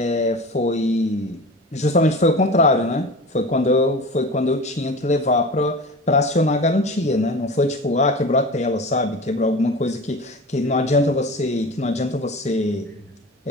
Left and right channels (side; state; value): both; normal; correlation 0.34